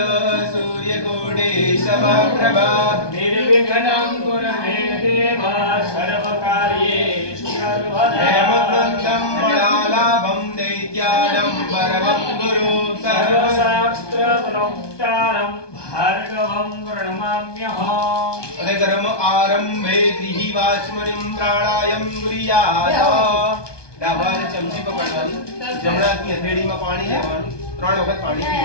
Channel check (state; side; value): late; right; 1.2 ms